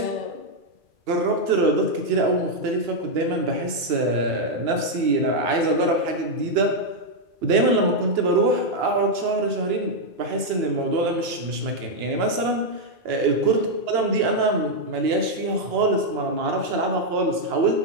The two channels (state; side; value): late; left; 2.9 ms